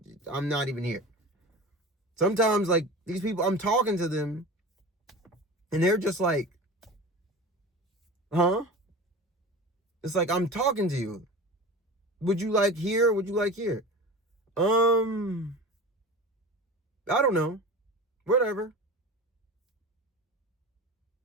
not even here. Sometimes, like, these people, I'm talking to them, and they're just like, huh? It's like, I'm talking to you. Would you like here? Would you like here? I don't know. Whatever.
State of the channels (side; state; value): both; normal; correlation 0.33